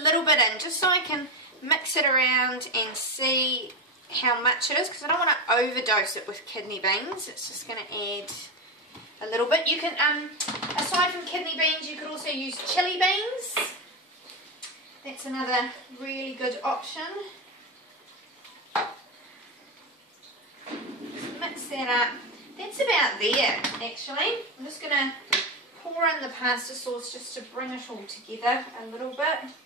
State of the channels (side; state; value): both; normal; correlation 0.14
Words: little bit in just so I can mix it around and see how much it is, because I don't want to overdose it with kidney beans. It's just going to add a little bit. You can, aside from kidney beans, you could also use chili beans. That's another really good option. Just mix that up. That's about there, actually. I'm just going to pour in the pasta sauce just to bring it all together a little bit.